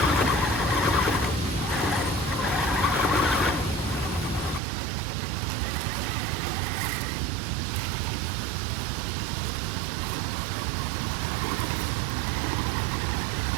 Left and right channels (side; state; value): left; drops out; at 4.6 s